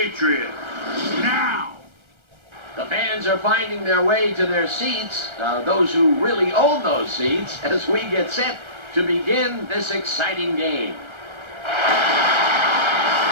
Now. The fans are finding their way to their seats, those who really own those seats, as we get set to begin this exciting game.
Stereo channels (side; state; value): left; late; 1.3 ms